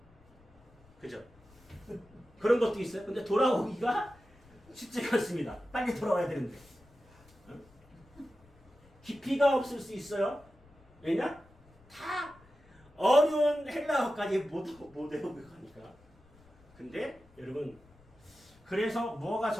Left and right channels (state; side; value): noise; left; rumble, 28 dB below the sound